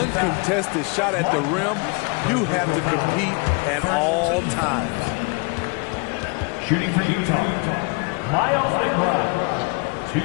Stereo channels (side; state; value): right; quieter; 31.0 dB